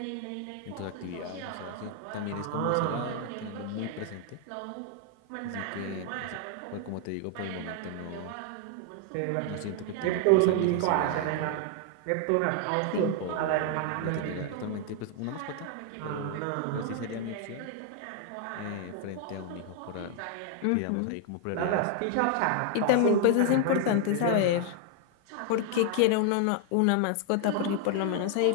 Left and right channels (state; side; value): different; both; correlation 0.00